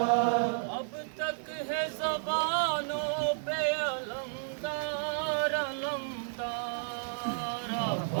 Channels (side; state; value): left; silent; 56 dB below the other